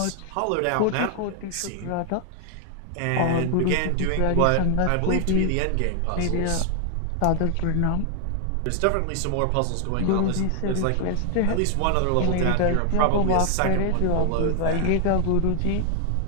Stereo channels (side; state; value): both; different; correlation 0.00